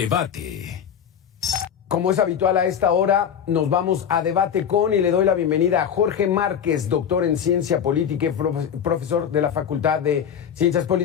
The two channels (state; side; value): quieter; right; 8.3 dB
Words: Como es habitual a esta hora, nos vamos a debate con y le doy la bienvenida a Jorge Márquez, doctor en Ciencia Política y profesor de la Facultad de Ciencias